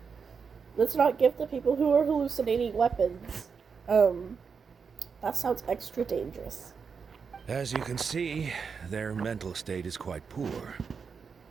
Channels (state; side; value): quieter; left; 5.8 dB